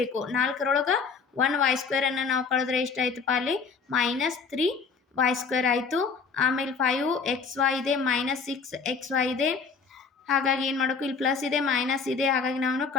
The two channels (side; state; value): right; quieter; 5.3 dB